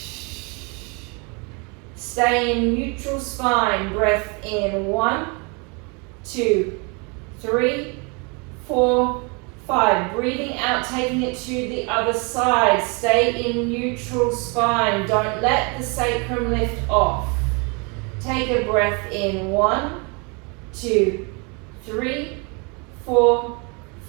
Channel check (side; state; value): left; quieter; 32.1 dB